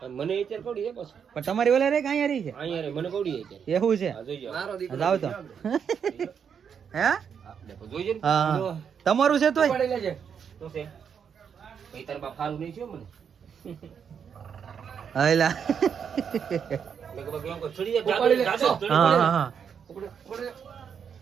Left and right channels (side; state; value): left; quieter; 7.3 dB